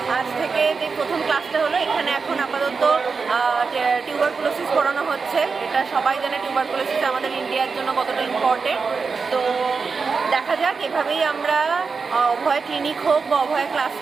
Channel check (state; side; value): quieter; left; 4.9 dB